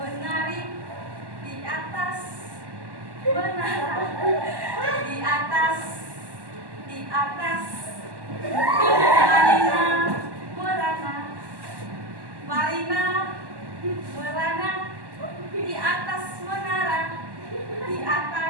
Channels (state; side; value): late; left; 1.1 ms